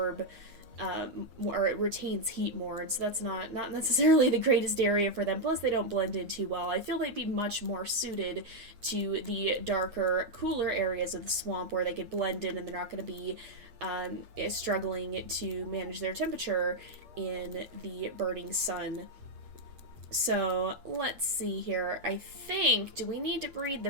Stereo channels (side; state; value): left; late; 8.5 ms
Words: or it retains heat more, and so that's not necessarily the greatest area for them. Plus, they don't blend in too well. I feel they'd be much more suited to the darker, cooler areas of the swamp where they could blend in and they're not going to be struggling to manage their temperature in the burning sun. So let's see here. I think, do we need to breed